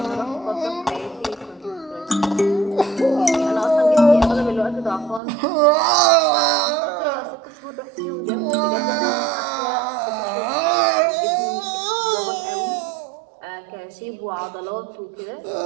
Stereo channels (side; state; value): left; drops out; at 5.2 s